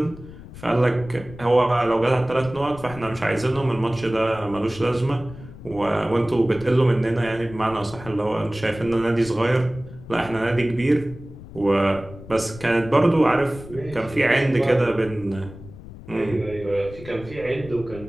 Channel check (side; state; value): left; noise; rumble, 16 dB below the sound